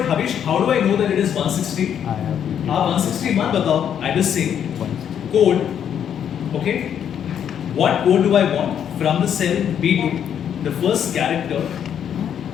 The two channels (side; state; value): right; quieter; 8.9 dB